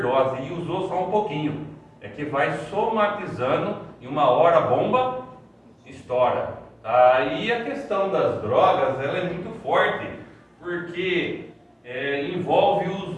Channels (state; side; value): identical; both; correlation 1.00